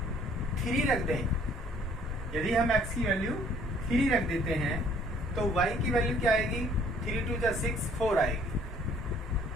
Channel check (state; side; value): normal; both; correlation 0.59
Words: 3 रख दें, यदि हम x की वैल्यू 3 रख देते हैं तो y की वैल्यू क्या आएगी, 3 2 जा 6, 4 आएगी।